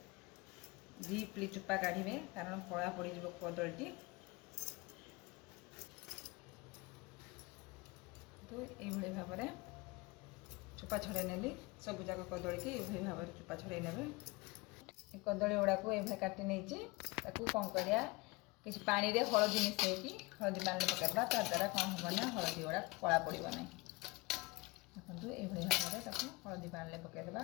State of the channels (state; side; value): quieter; right; 24.0 dB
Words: डीपली चुप्पा काढ़े कारण कला पड़ कदली तो ये भाव में चुप्पा छड़े नेली सब जाक कदली की ये भाव में चुप्पा छड़े ने कदली गुड़ा को ये काटि नहीं कौन करिया किसी पानी रे हलदी मिसैकी हलदी पानी पकड़वा ता द्वारा कौन हम ना हलदी गुड़ा कला पड़ ना देखो ये भाव में हलदी पानी पकईदेवा